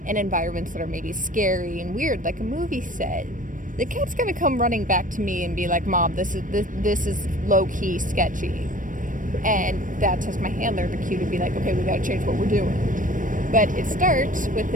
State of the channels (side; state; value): left; late; 0.38 ms